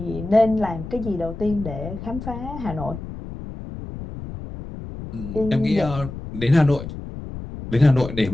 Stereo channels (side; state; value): left; noise; rumble, 10 dB below the sound